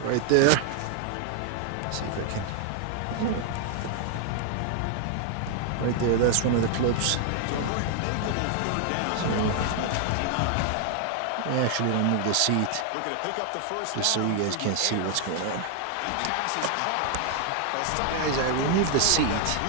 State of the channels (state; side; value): different; both; correlation 0.00